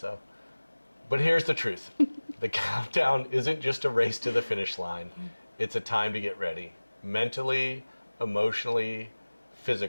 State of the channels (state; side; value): inverted; both; correlation -1.00